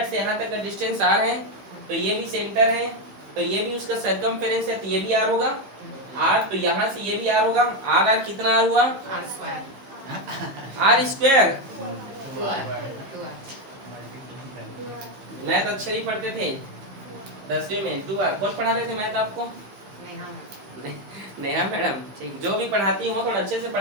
से यहाँ तक का डिस्टेंस r है, तो ये भी सेंटर है, तो ये भी उसका सरकमफेरेंस है, तो ये भी r होगा, r, तो यहाँ से ये भी r होगा, r कितना r हुआ, r स्क्वायर, मैथ अच्छे नहीं पढ़ते थे 10वीं में, 2r कौन पढ़ा रहे थे मैथ आपको, नेहा मैडम, ठीक, जो भी पढ़ाती हो थोड़ा अच्छे से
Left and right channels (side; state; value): left; late; 15 ms